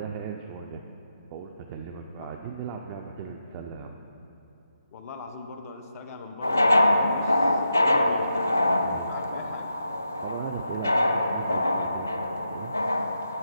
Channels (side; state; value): both; inverted; correlation -0.85